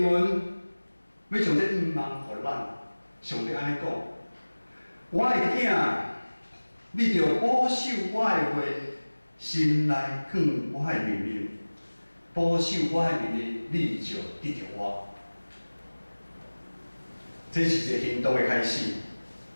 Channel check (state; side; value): inverted; both; correlation -1.00